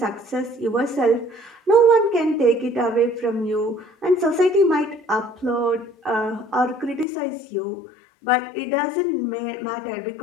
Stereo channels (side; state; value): right; drops out; at 7.1 s